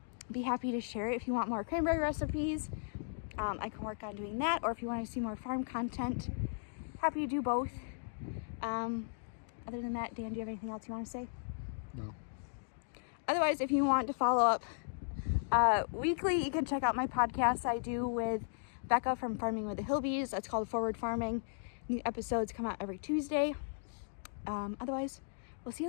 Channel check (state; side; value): silent; right; digital silence